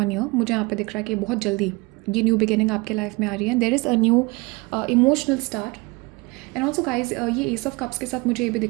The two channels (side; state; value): left; quieter; 25.7 dB